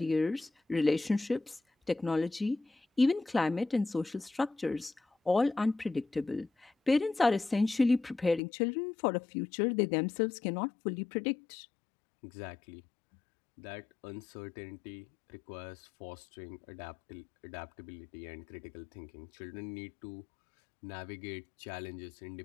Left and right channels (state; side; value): drops out; right; at 8.4 s